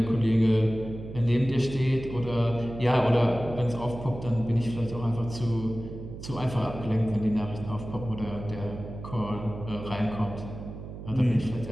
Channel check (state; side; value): noise; right; hum, 11 dB below the sound